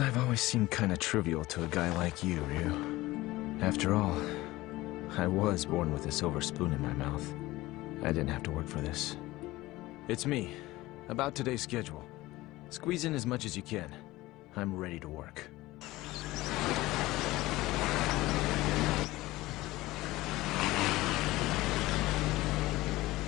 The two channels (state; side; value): quieter; right; 18.6 dB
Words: always seemed kinda trivial to a guy like you, Ryu. After all, I was born with a silver spoon in my mouth. I didn't have to work for this. It's me. About today's schedule. Squeeze in as much as you can. I'm ready to work.